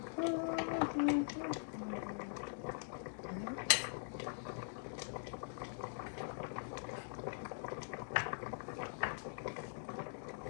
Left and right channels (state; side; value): silent; right; digital silence